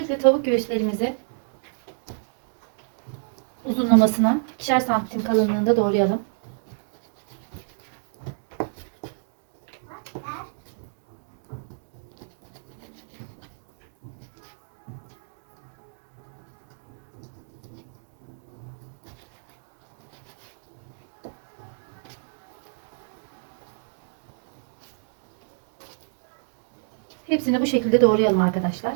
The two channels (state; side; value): silent; left; digital silence